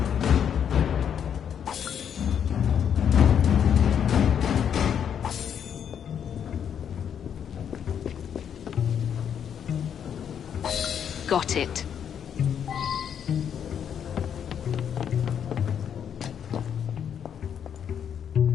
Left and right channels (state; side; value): quieter; right; 8.4 dB